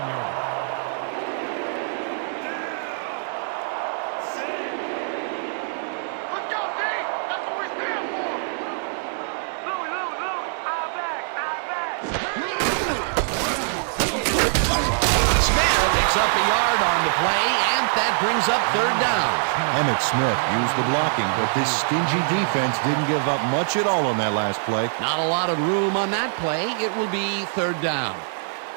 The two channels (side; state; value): left; silent; 55 dB below the other